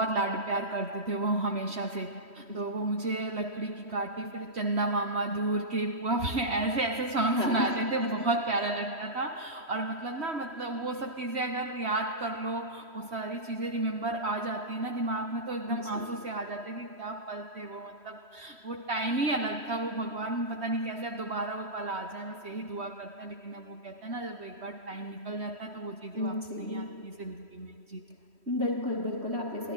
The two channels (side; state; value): left; late; 3.1 ms